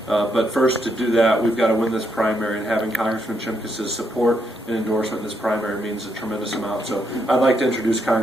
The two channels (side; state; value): both; normal; correlation 0.78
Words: but first to do that, we've got to win this primary, and having Congressman Shimkus' support and endorsement in this primary means a tremendous amount. So I'd like to introduce